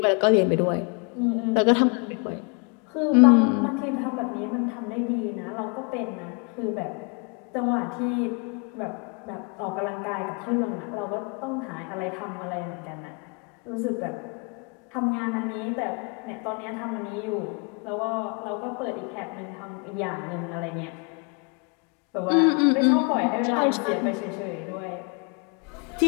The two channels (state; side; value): quieter; right; 34.6 dB